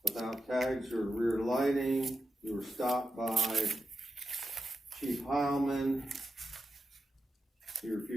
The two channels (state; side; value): normal; both; correlation 0.90